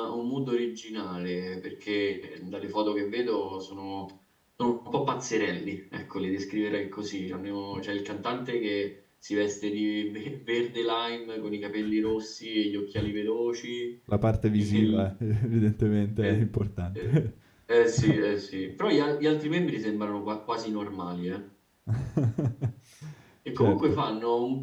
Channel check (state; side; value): identical; both; correlation 1.00